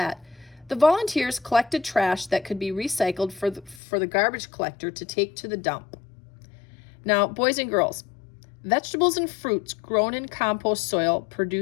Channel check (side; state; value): right; drops out; at 3.8 s